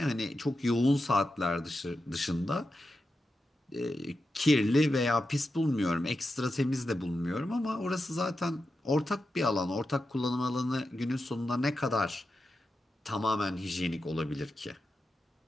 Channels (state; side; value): normal; both; correlation 0.89